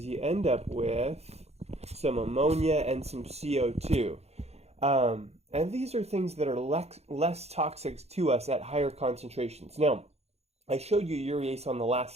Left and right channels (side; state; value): left; late; 0.31 ms